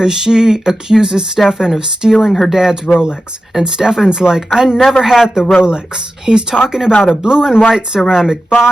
she accuses Stephan of stealing her dad's Rolex. And Stephan's like, I never had the Rolex. He's talking about a blue and white ceramic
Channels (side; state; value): both; normal; correlation 0.93